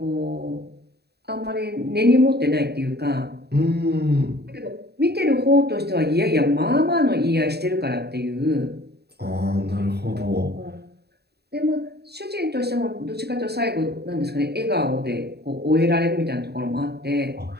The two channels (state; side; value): late; left; 0.48 ms